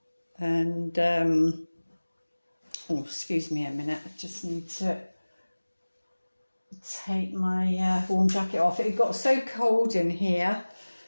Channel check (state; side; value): inverted; both; correlation -1.00